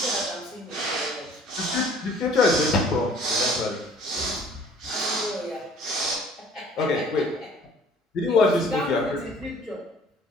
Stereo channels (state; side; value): normal; both; correlation 0.53